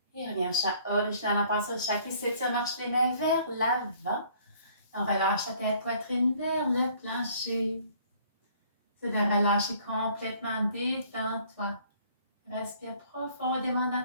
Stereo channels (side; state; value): both; inverted; correlation -0.58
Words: Et revient au chat original en passant au chat qui s'étire, marche les mains vers l'avant. On relâche la tête, poitrine vers le plancher. C'est de relâcher complètement, détends-toi. Respire profondément